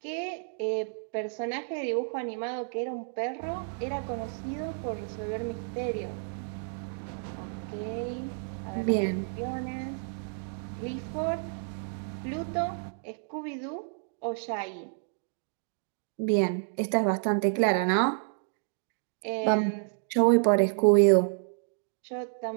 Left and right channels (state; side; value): silent; left; digital silence